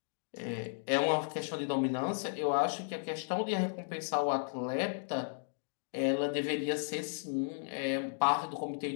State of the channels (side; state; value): right; silent; digital silence